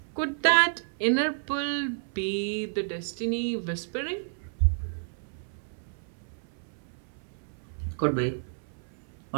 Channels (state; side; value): silent; left; 57 dB below the other